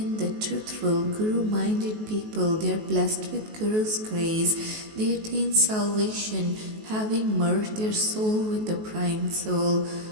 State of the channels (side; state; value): left; late; 19 ms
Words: the truthful, Guru-minded people, they are blessed with Guru's grace. They attain salvation, having merged their soul with the prime soul.